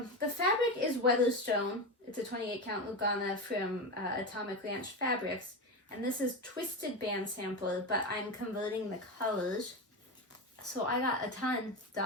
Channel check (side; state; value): both; normal; correlation 0.19